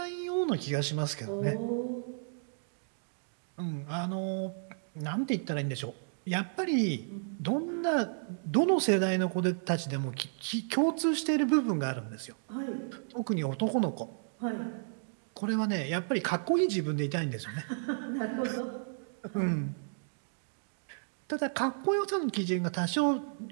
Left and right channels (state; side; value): silent; left; digital silence